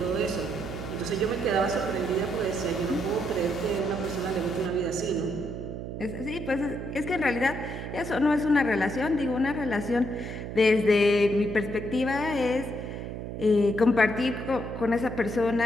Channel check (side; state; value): right; noise; hum, 7 dB below the sound